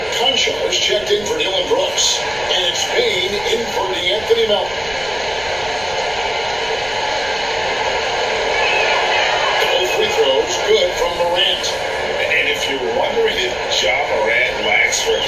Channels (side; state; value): right; noise; rumble, 19 dB below the sound